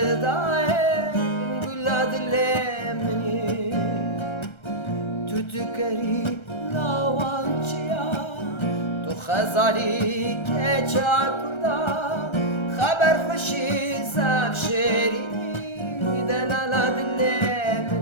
Gula dilemini Tütükeri lavançıya Tu khazali keça kurda خبر خوشی زب شیرینی دلالا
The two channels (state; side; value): late; right; 1.3 ms